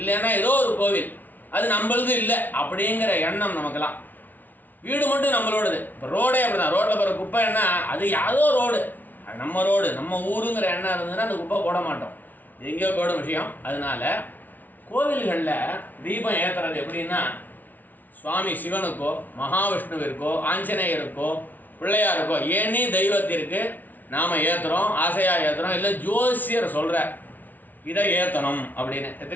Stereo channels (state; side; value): late; right; 0.082 ms